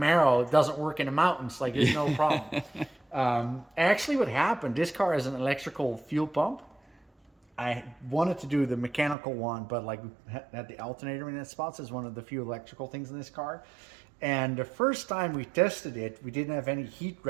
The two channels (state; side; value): drops out; left; at 9.2 s